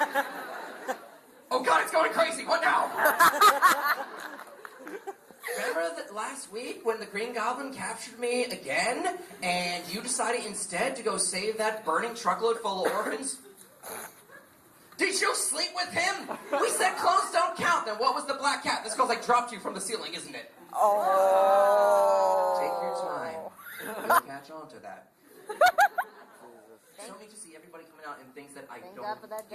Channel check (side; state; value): both; identical; correlation 1.00